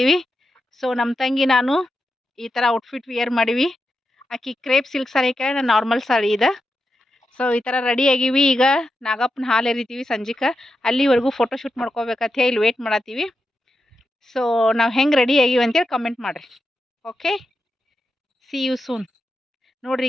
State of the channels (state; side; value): normal; both; correlation 0.88